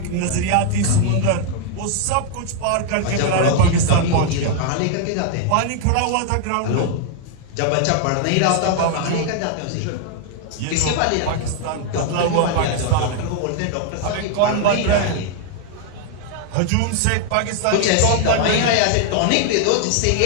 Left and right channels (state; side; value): different; both; correlation 0.00